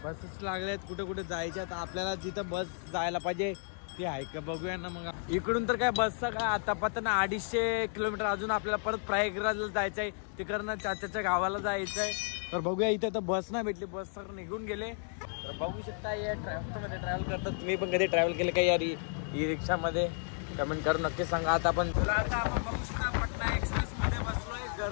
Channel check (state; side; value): silent; right; 56 dB below the other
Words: बसेस लागल्यात, कुठे कुठे जायच्या. तर आपल्याला जिथं बस जायला पाहिजे ती आहे का बघूया ना. मग इकडून तर काय बसचा काय आता पता ना. 250 किलोमीटर अजून आपल्याला परत प्रयागराजला जायचं आहे. तिकडनं चाच्याच्या गावाला जायचं आहे. तर बघूया. इथे तर बस नाही भेटली, बस सगळं निघून गेले. तर बघू शकता या ट्रॅव्हलमध्ये ट्रॅव्हल करतात. तुम्ही पण कधी ट्रॅव्हल केले का यार ई रिक्षामध्ये? कमेंट करून नक्की सांगा. आता आपण बघू शकता पटना एक्सप्रेस मध्ये बसलोय.